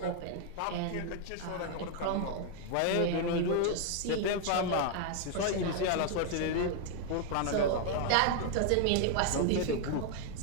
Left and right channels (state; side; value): different; both; correlation 0.00